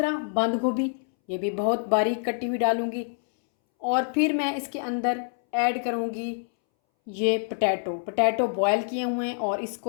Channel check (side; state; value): right; silent; 61 dB below the other